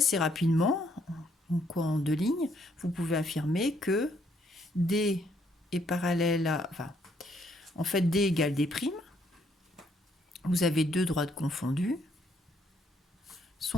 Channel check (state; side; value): normal; both; correlation 0.69